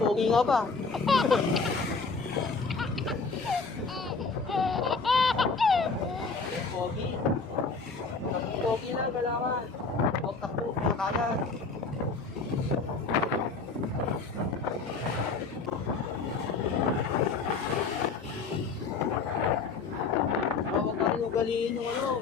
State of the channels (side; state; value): right; quieter; 4.5 dB